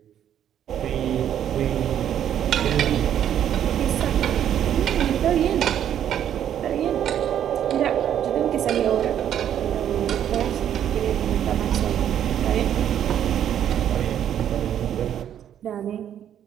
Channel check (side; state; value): left; quieter; 10.1 dB